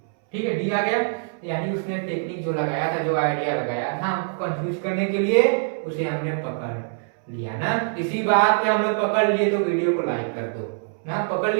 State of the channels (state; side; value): silent; left; 63 dB below the other